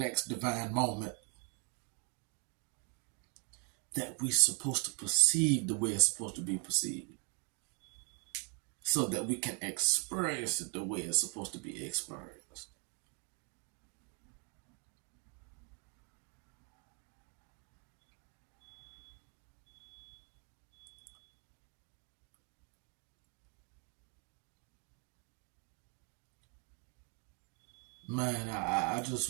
divine moment that we're supposed to perceive the way it's supposed to be perceived, so that we can experience it the way it's supposed to be experienced. Man, I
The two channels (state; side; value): quieter; left; 36.7 dB